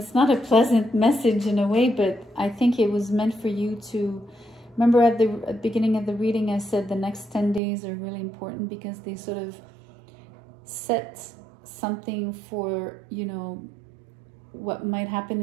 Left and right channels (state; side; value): drops out; left; at 7.6 s